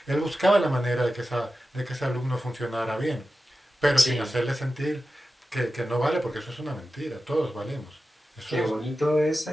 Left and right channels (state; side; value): normal; both; correlation 0.93